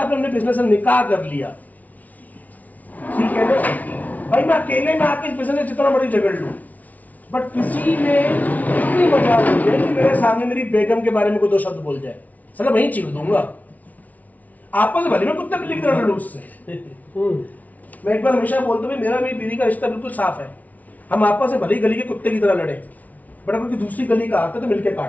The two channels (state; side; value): late; right; 0.073 ms